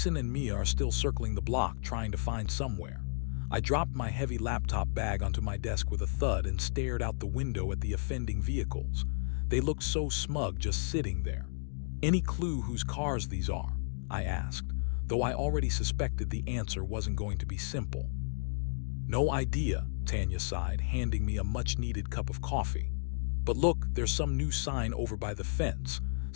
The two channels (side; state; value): right; silent; digital silence